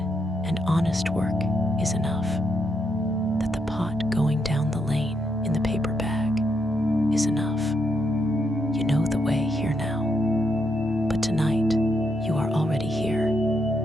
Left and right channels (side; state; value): both; normal; correlation 0.79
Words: and honest work is enough, that the pot going down the lane in the paper bag is enough. You know the way here now, but tonight you are already here.